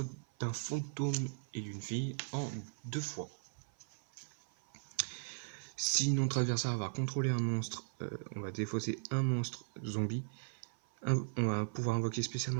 d'un fantôme et d'une fille en 2 fois. Si notre adversaire va contrôler un monstre, on va défausser un monstre zombie. On va pouvoir invoquer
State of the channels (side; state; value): left; silent; 53 dB below the other